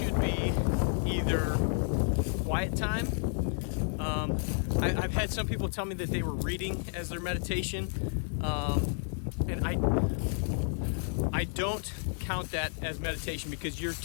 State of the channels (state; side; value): silent; right; 57 dB below the other